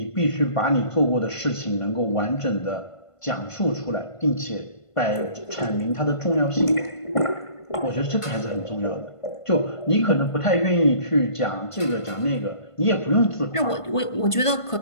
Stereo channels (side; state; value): right; late; 1.5 ms